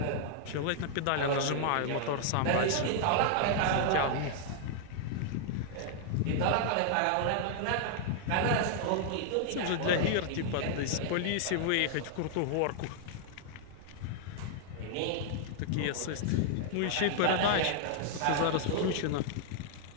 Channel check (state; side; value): different; both; correlation -0.01